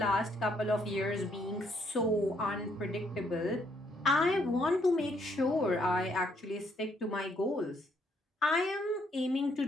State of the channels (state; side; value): normal; both; correlation 0.70